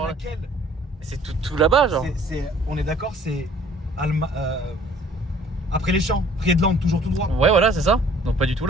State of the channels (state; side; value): normal; both; correlation 0.55